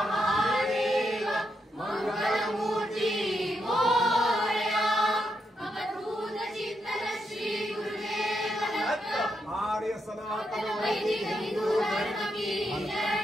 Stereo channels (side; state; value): both; normal; correlation 0.81